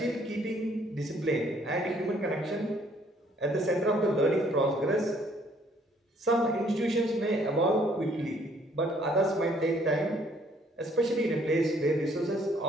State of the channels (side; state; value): both; normal; correlation 0.63